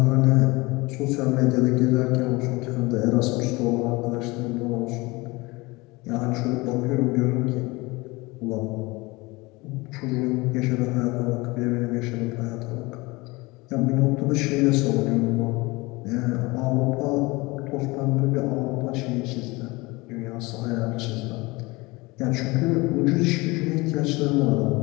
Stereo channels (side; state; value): right; quieter; 23.4 dB